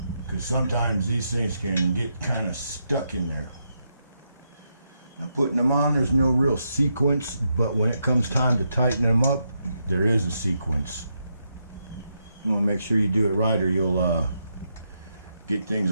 Because sometimes these things can get kind of stuck in there. Now putting them on, there's no real sequence, but when it comes time to tighten them up, there is a sequence. You want to make sure you do it right or you'll get things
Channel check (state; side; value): inverted; both; correlation -0.82